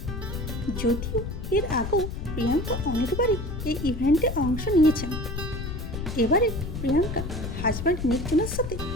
যদিও এর আগেও প্রিয়াঙ্কা অনেকবারই এই ইভেন্টে অংশ নিয়েছেন। এবারে প্রিয়াঙ্কা হাজব্যান্ড নিক জোনাসের সাথে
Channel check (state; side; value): noise; left; rumble, 6 dB below the sound